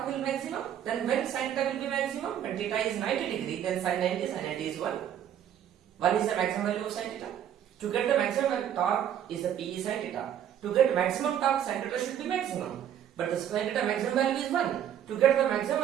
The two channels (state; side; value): quieter; left; 10.0 dB